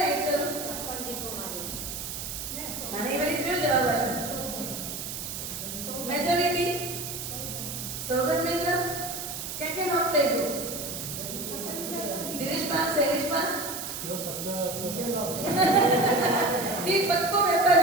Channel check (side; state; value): right; noise; hiss, 6 dB below the sound